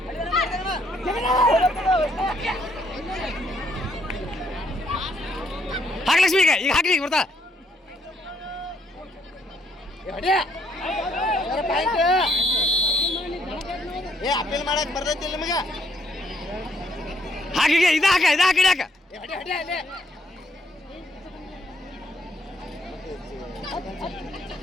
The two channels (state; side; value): normal; both; correlation 0.70